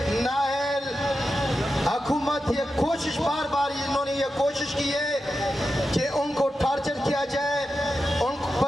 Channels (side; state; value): both; normal; correlation 0.90